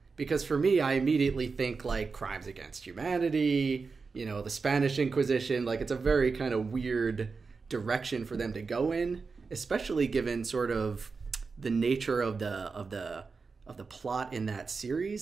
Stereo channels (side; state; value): left; quieter; 4.7 dB